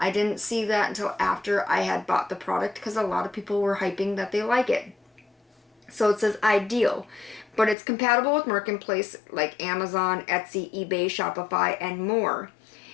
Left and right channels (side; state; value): right; drops out; at 7.8 s